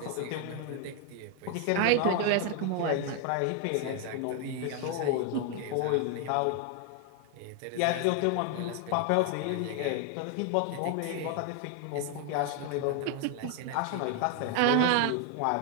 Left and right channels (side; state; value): both; different; correlation 0.00